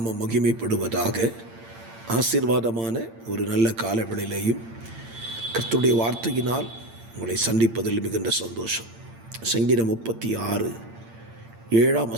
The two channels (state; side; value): late; left; 8.8 ms